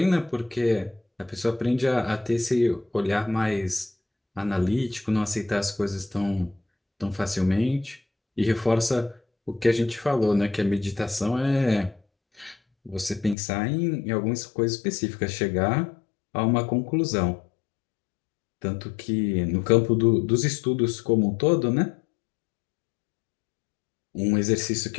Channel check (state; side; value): drops out; right; at 13.4 s